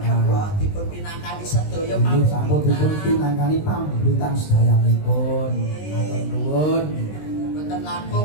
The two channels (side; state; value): right; late; 20 ms